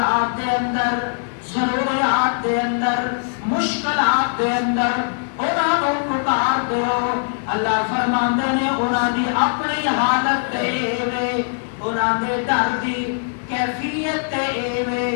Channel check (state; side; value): silent; right; 57 dB below the other